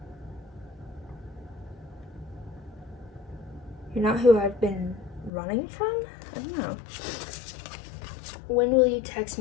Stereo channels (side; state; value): right; drops out; at 5.3 s